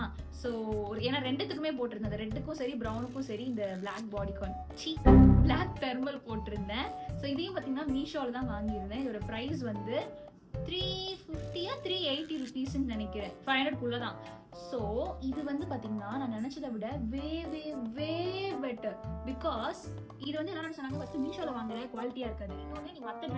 ஸோ ஏன்னா ரெண்டுத்துக்குமே போட்டிருந்தேன், ரெட்டுக்கும் சரி ப்ரௌனுக்கும் சரி இந்த பிளாக் பாடிகான் பிளாக் தெர்மல் போட்டிருந்தேன். ஸோ இதையும் பார்த்தீங்கன்னா மீஷோவில் தான் வாங்கியிருந்தேன். இதோட ப்ரைஸ் வந்து 350 380 ருபீஸ்ன்னு நினைக்கிறேன், 500 தான். ஸோ இது வந்து பார்த்தீங்கன்னா நான் நினைச்சதை விட வே வே வே பெட்டர். பிகாஸ் இது வந்து என்ன சொன்னாங்க, ஃபர்ஸ்ட் மீஷோவில் வாங்குற குவாலிட்டியா இருக்காது, இன்னொன்று நீ மற்ற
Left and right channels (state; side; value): identical; both; correlation 1.00